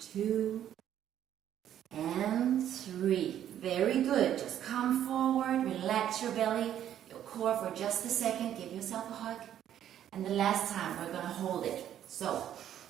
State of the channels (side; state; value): left; quieter; 10.7 dB